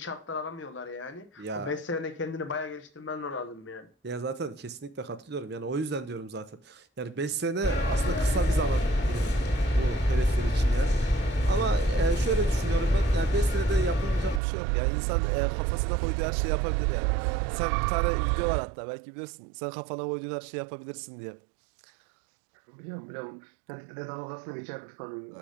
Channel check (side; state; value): left; drops out; at 14.4 s